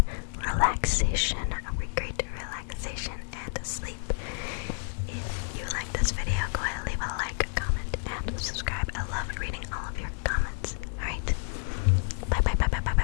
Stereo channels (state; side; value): silent; right; 58 dB below the other